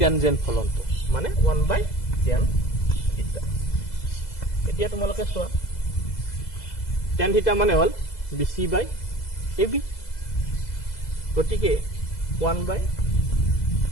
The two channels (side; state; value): right; late; 2.0 ms